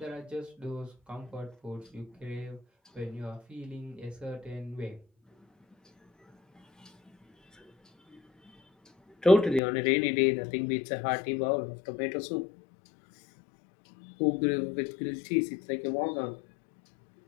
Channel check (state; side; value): drops out; right; at 9.6 s